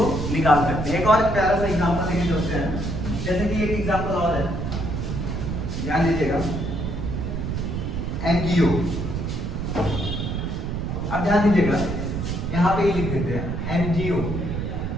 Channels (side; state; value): right; noise; rumble, 3 dB below the sound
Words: निकाल सकते हैं। एक और प्यारा सा एग्जांपल लेके चलते हैं, जैसे कि एक एग्जांपल और है, ध्यान दीजिएगा, एमजीओ। अब ध्यान दीजिएगा, यहाँ पे ही लिख देते हैं एमजीओ।